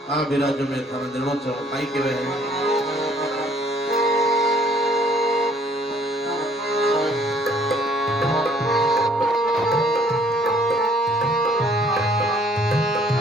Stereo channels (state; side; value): normal; both; correlation 0.60